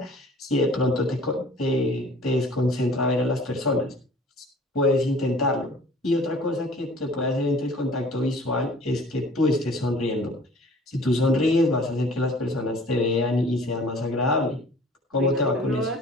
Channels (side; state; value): both; normal; correlation 0.50